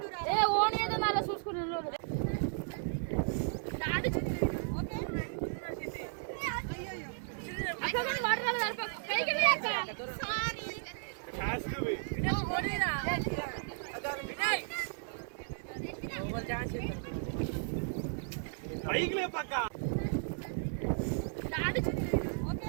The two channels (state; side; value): silent; left; digital silence